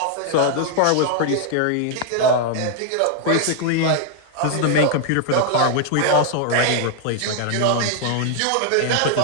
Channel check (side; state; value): both; different; correlation 0.00